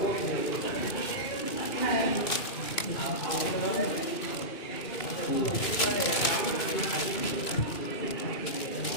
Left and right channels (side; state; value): right; late; 3.0 ms